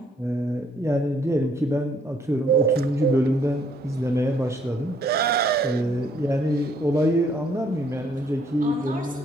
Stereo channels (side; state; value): both; normal; correlation 0.66